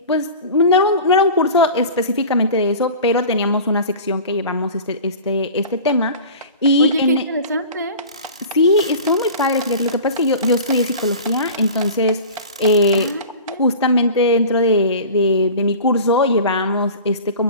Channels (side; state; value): both; inverted; correlation -0.38